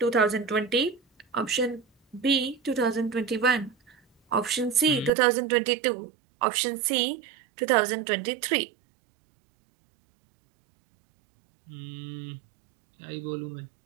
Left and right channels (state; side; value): drops out; left; at 5.1 s